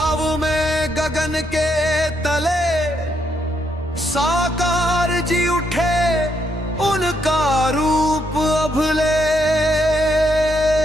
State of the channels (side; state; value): both; normal; correlation 0.76